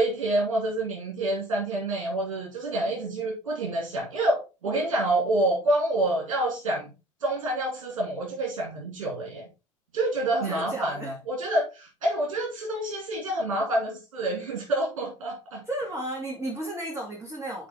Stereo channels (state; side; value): normal; both; correlation 0.51